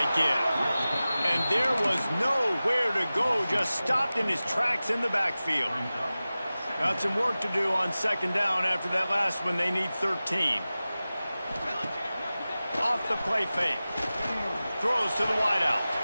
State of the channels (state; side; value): inverted; both; correlation -0.96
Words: give. And there was nowhere to go, just stopped in his tracks in the backfield. Got some work to do on 2nd down after that last one. They need 13. Off the play fake. Throws to the wideout.